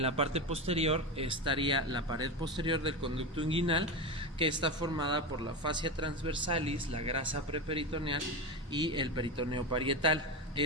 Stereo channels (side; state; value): both; normal; correlation 0.18